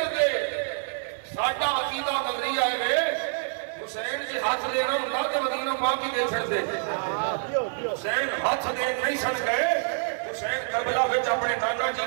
ساڈا عقیدہ نظریہ ہے حسین جی ہاتھ دینا ہوندا تے مدینہ پاک ہی دے چھڑدے حسین ہاتھ دے نہیں سن گئے حسین کربلا وچ اپنے نانا جی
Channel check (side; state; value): left; silent; 60 dB below the other